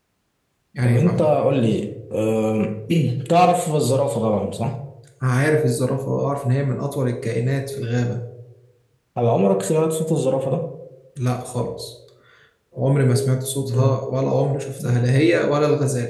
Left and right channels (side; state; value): both; identical; correlation 1.00